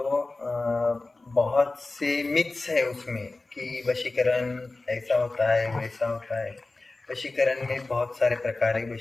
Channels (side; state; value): right; quieter; 3.3 dB